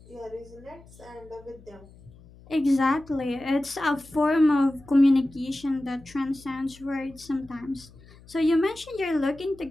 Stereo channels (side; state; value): left; noise; hum, 23 dB below the sound